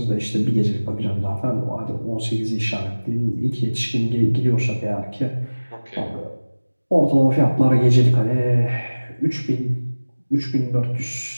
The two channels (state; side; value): inverted; both; correlation -1.00